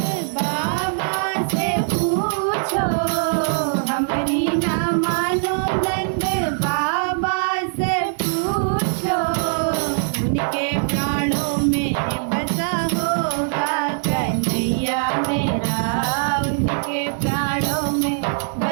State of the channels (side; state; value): left; silent; 59 dB below the other